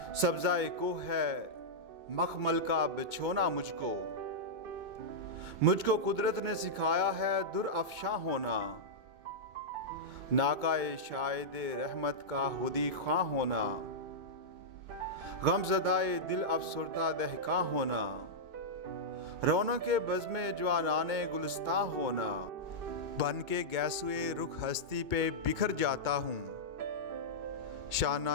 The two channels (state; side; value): late; left; 2.2 ms